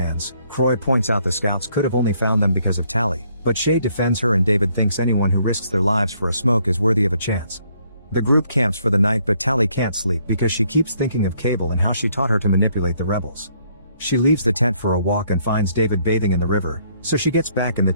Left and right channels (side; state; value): both; inverted; correlation -0.68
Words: Croy points out the scouts could have only found them because of Tally, but Shay defends her and David thinks anyone who risks their lives for a smoke is worthy of a chance. The group camps for the night, but Tally can't sleep because she keeps thinking of Cable and how she taught her to manipulate the rebels. She leaves the tent for a walk and finds David bathing in the river, so she gets back in the